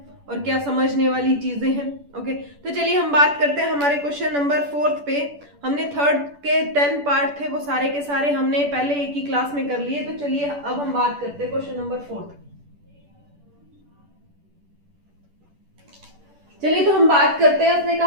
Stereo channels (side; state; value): left; late; 10 ms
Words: और क्या समझने वाली चीजें हैं। ओके, तो चलिए हम बात करते हैं हमारे क्वेश्चन नंबर 4 पे। हमने थर्ड के 10 पार्ट थे, वो सारे के सारे हमने पहले एक ही क्लास में कर लिए। तो चलिए अब हम बात करते हैं क्वेश्चन नंबर 4। चलिए तो हम बात करते हैं। उसने